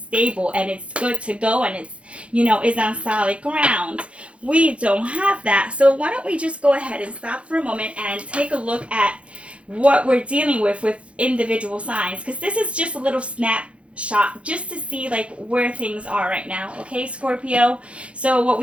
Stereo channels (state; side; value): late; left; 0.061 ms